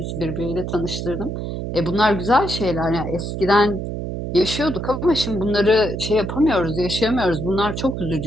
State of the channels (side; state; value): right; noise; hum, 5 dB below the sound